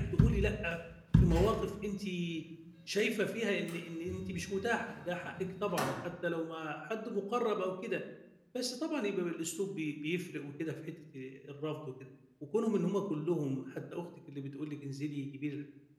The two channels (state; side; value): identical; both; correlation 1.00